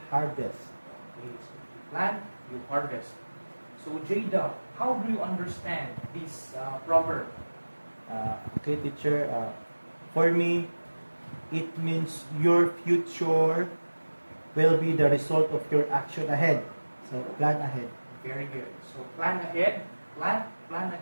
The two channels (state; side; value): inverted; both; correlation -1.00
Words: harvest. Okay, so you plant, you harvest. So Jada, how do you understand this proverb? Okay, teacher. For me, it means your future will be the result of your action ahead. So plan ahead. Very good. So plan ahead, plan